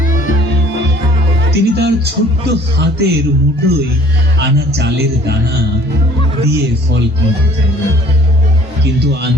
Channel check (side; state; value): both; normal; correlation 0.54